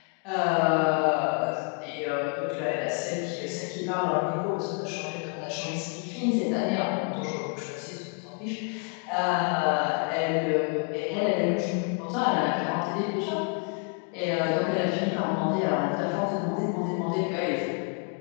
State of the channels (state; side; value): quieter; right; 36.8 dB